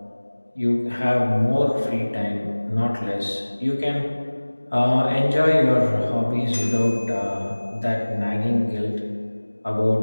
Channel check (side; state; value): both; inverted; correlation -1.00